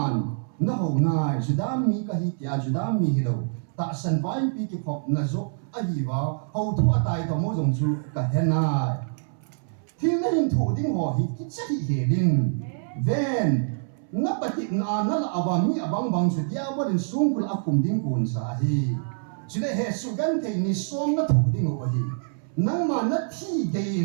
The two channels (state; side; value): silent; left; 61 dB below the other